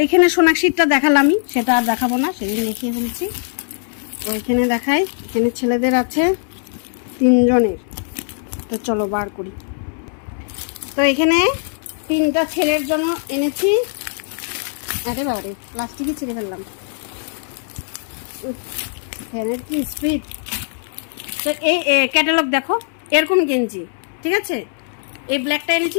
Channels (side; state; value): right; silent; digital silence